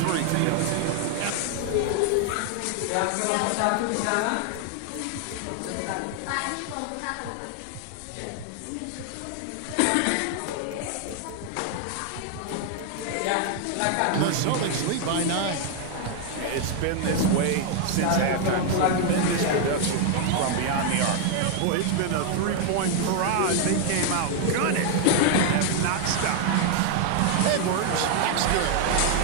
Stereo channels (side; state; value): both; different; correlation 0.00